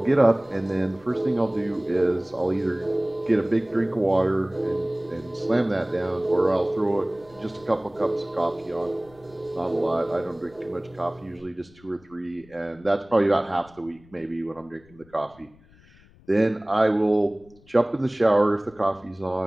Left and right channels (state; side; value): noise; left; rumble, 27 dB below the sound